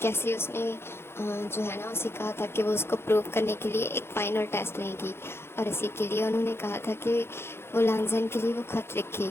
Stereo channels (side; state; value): right; late; 0.12 ms